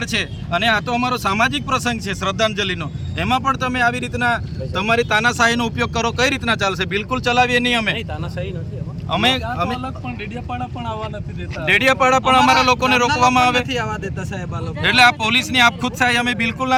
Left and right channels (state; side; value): identical; both; correlation 1.00